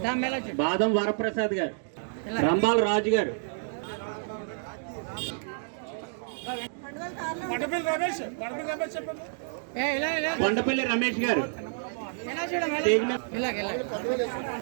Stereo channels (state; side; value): silent; left; digital silence